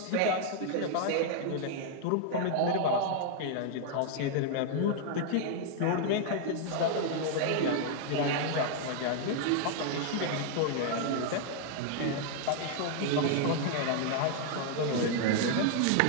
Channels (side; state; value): both; different; correlation 0.00